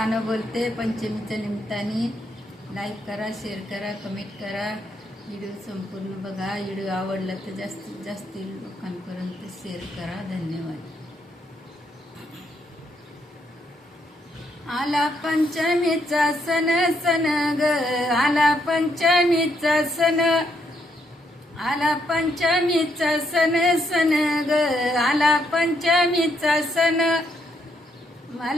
बोलते पंचमीच्या निमित्ताने. लाईक करा, शेअर करा, कमेंट करा. व्हिडिओ संपूर्ण बघा. व्हिडिओ आवडला तर जास्तीत जास्त लोकांपर्यंत शेअर करा. धन्यवाद. आला पंचमीचा सण सण ग, आला पंचमीचा सण, आला पंचमीचा सण सण ग, आला पंचमीचा सण.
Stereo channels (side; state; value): both; normal; correlation 0.75